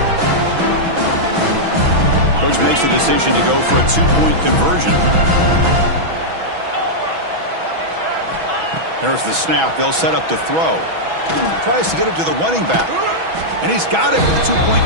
Coach makes the decision to go for a two-point conversion. There's the snap. They'll set up to throw. Tries to get it to the running back. And he's got it with a two-point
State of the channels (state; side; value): late; left; 6.1 ms